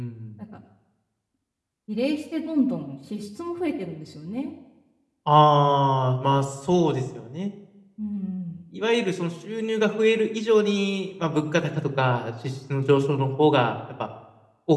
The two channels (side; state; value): both; identical; correlation 1.00